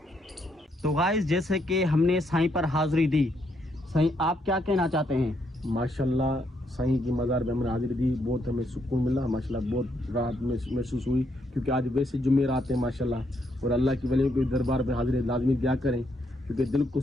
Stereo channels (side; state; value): both; normal; correlation 0.75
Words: तो गाइस जैसे कि हमने साईं पर हाजिरी दी, साईं आप क्या कहना चाहते हैं? माशाल्लाह साईं की मज़ार पे हमने हाजिरी दी, बहुत हमें सुकून मिला माशाल्लाह, बहुत राहत महसूस हुई क्योंकि आज वैसे जुमेरात हैं माशाल्लाह। और अल्लाह की वलियों के दरबार पे हाजिरी लाजमी दिया करें क्योंकि दिल को